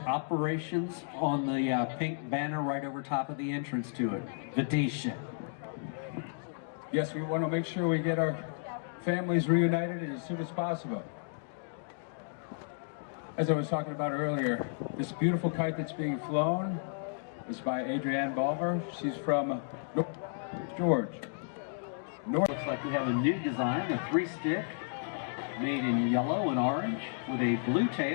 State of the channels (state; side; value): silent; right; digital silence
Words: on the pink banner right over top of the entrance to it. Vidisha. Yes, we want to make sure we get our families reunited as soon as possible. As I was talking about earlier, this beautiful kite that's being flown is by Adrienne Balmer. She's from North George. Looks like we have a new design, a 3-stick made in yellow and orange with a blue